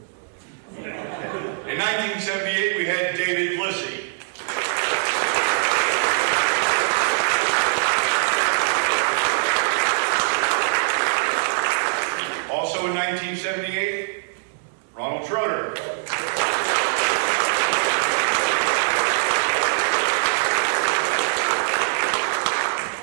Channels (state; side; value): silent; left; digital silence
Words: In 1978, we had David Glissy. Also in 1978, Ronald Schroeder.